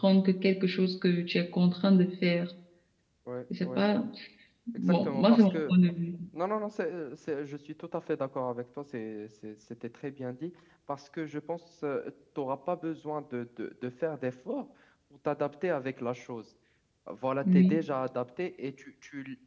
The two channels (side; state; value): both; identical; correlation 1.00